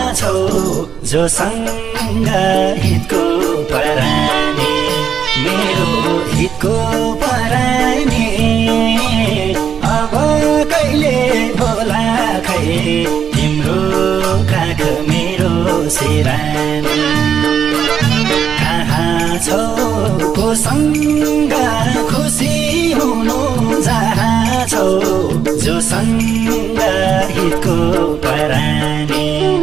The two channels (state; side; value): quieter; left; 7.8 dB